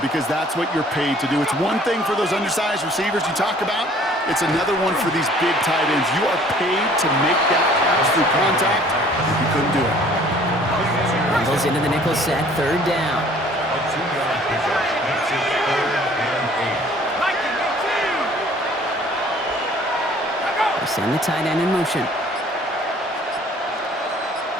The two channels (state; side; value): normal; both; correlation 0.54